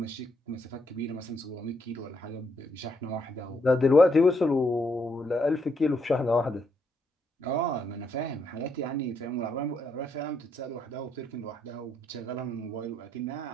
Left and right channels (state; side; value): normal; both; correlation 0.75